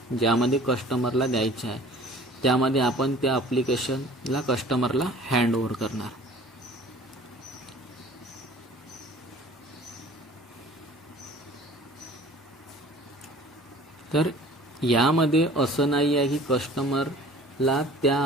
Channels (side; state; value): both; normal; correlation 0.47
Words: ज्यामध्ये कस्टमरला द्यायचं आहे त्यामध्ये आपण त्या ॲप्लिकेशनला कस्टमरला हँडओव्हर करणार. तर यामध्ये असं नाही आहे की कस्टमरला त्या